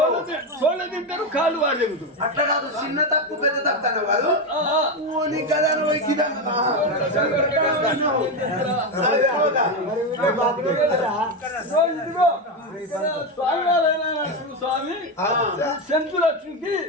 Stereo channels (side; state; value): both; normal; correlation 0.11